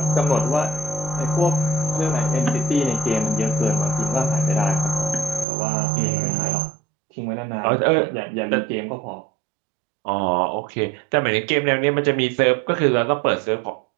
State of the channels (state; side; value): drops out; left; at 5.5 s